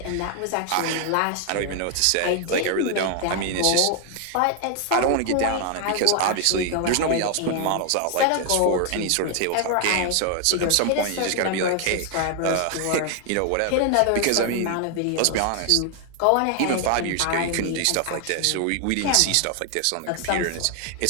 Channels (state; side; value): different; both; correlation 0.00